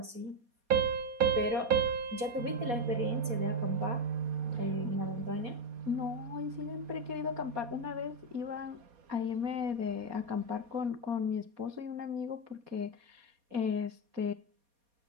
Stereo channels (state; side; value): late; left; 4.2 ms